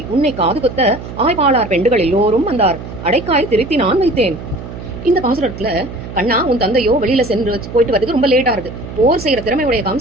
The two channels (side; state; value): right; noise; hum, 11 dB below the sound